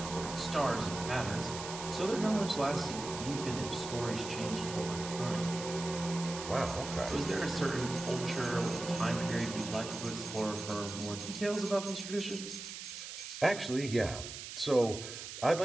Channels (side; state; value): right; noise; hiss, 9 dB below the sound